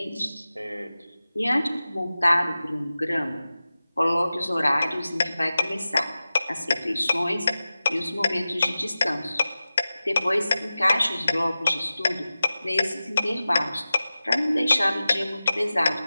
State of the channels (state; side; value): inverted; both; correlation -0.95